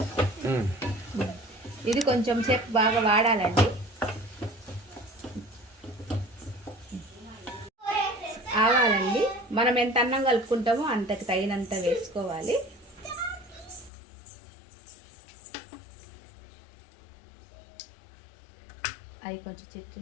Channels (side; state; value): right; drops out; at 13.9 s